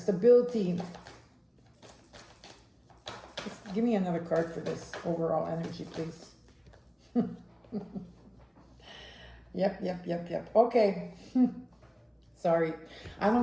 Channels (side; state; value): both; identical; correlation 1.00